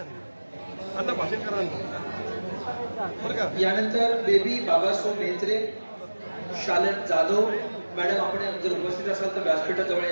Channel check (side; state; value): both; inverted; correlation -1.00